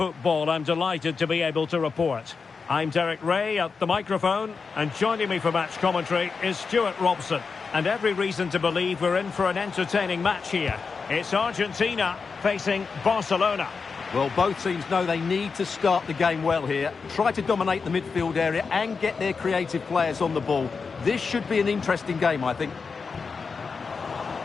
I'm delighted to be able to report. I'm Derek Ray at the microphone, and joining me for match commentary is Stuart Robson. And every reason to believe we're in for an entertaining match here. It's Argentina facing Barcelona. Well, both teams know they need to start the game well here. Try to dominate the midfield area and get their creative players on the ball. This should be an interesting game, I think.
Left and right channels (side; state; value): right; quieter; 5.1 dB